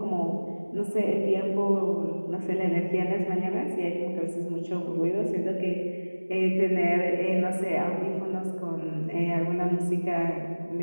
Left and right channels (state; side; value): inverted; both; correlation -1.00